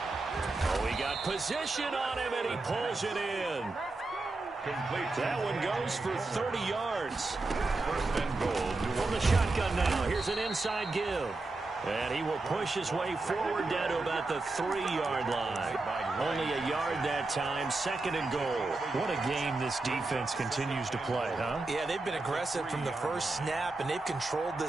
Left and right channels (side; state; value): left; quieter; 3.3 dB